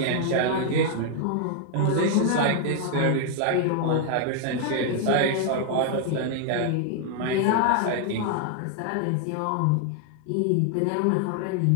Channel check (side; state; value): both; different; correlation 0.00